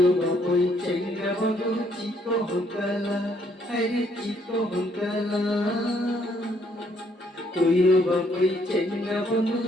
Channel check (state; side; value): normal; both; correlation 0.68